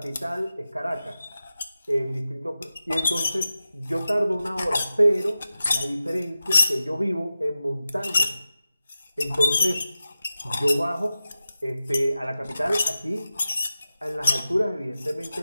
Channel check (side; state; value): both; inverted; correlation -0.94